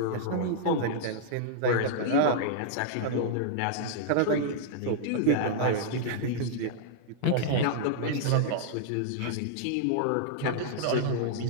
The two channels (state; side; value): different; both; correlation -0.01